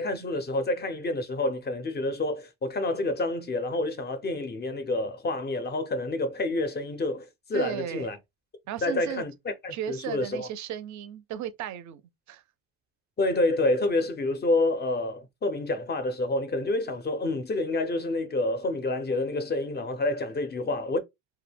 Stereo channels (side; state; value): both; normal; correlation 0.32